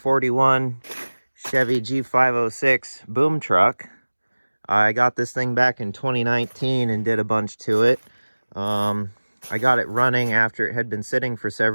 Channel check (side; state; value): both; inverted; correlation -1.00